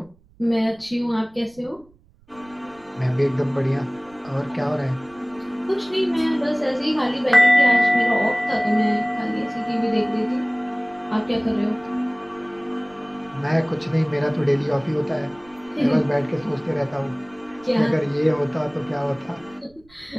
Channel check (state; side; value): noise; right; rumble, 29 dB below the sound